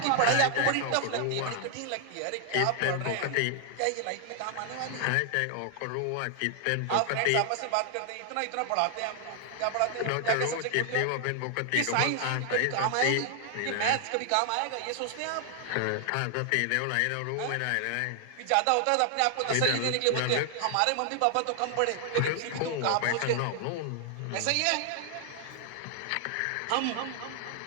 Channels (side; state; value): both; different; correlation 0.00